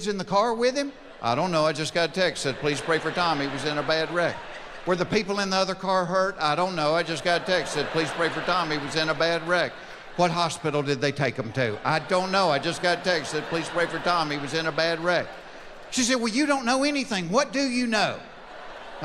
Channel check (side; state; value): both; identical; correlation 1.00